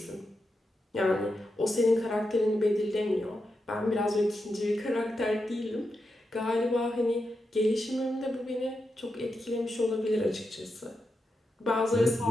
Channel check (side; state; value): both; normal; correlation 0.87